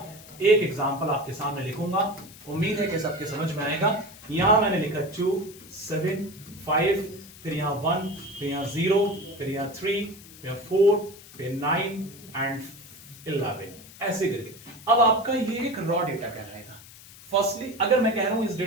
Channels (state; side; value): noise; left; hiss, 19 dB below the sound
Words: एक एग्जाम्पल आपके सामने लिखूंगा, उम्मीद है कि सबके समझ में आएगा। यहां मैंने लिखा 2, 7, 5, फिर यहां 1, फिर यहां 0, फिर यहां 3, फिर 4, फिर 9 एंड 11, ऐसे करके। अब आपका ये एक रॉ डेटा कहलाएगा। फर्स्टली अगर मैं कह रहा हूं इस